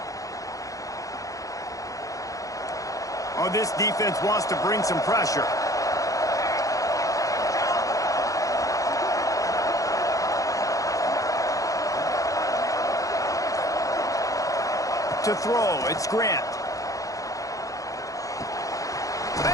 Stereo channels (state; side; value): late; right; 0.16 ms